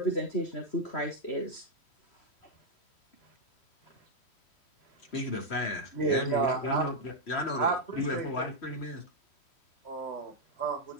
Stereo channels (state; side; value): late; right; 3.1 ms